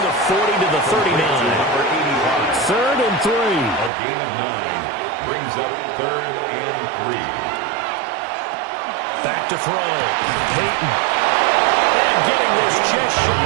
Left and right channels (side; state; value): left; drops out; at 3.9 s